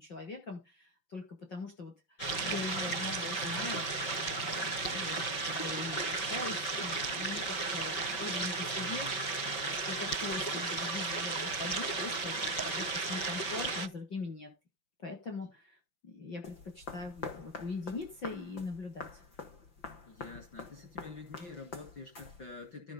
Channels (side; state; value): right; late; 5.9 ms